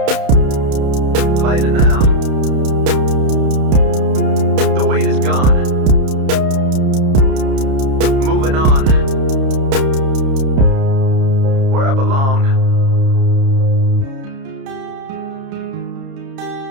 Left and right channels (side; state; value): left; late; 30 ms